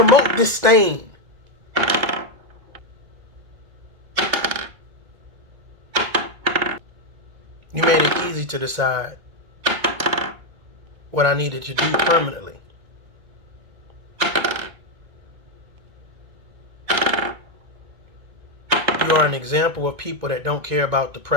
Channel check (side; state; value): left; late; 1.8 ms